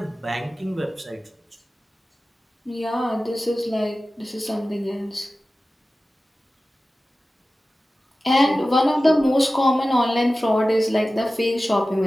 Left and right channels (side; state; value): both; normal; correlation 0.95